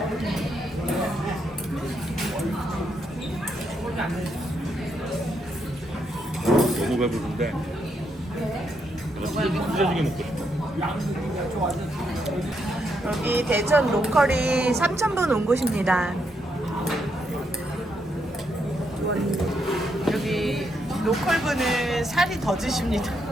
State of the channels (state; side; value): normal; both; correlation 0.78